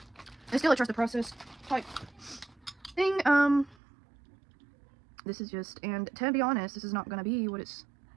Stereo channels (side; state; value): left; drops out; at 3.8 s